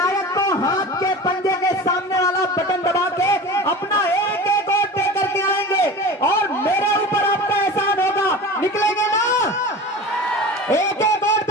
को हाथ के पंजे के सामने वाला बटन दबा के अपना एक एक वोट दे करके आएंगे और मेरे ऊपर आपका एहसान होगा। निकलेंगे ना? एक एक वोट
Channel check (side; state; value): both; normal; correlation 0.34